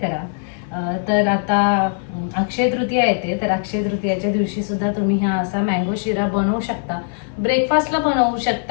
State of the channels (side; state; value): right; silent; 59 dB below the other